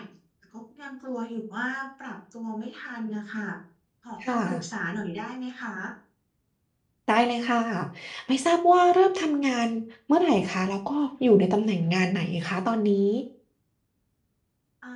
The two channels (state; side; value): identical; both; correlation 1.00